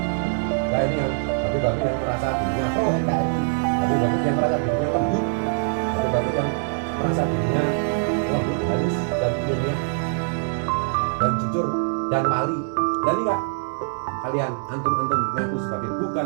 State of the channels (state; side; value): silent; left; digital silence